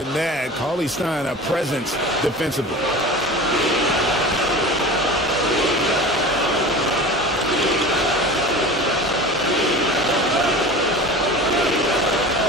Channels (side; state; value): both; normal; correlation 0.35